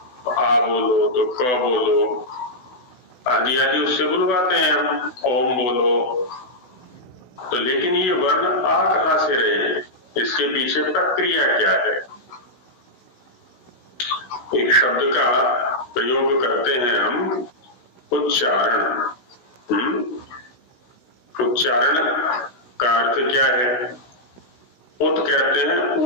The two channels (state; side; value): late; right; 16 ms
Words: आ बोलो तो क बोलो, आदि आदि उससे बुलवाते हैं हम, ओम बोलो। तो लेकिन ये वर्ण आ कहां से रहे हैं, इसके पीछे प्रक्रिया क्या है? एक शब्द का प्रयोग करते हैं हम उच्चारण। उच्चारण का अर्थ क्या है? उत कहते हैं